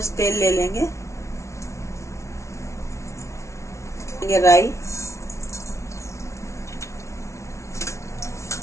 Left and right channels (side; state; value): right; late; 0.14 ms